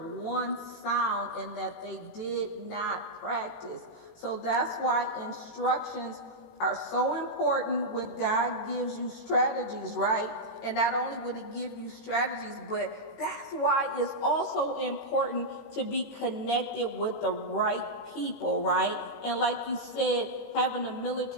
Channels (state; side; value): late; right; 18 ms